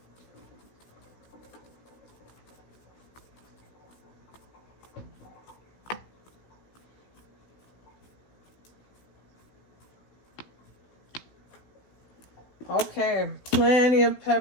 Okay, plenty of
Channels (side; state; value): right; late; 16 ms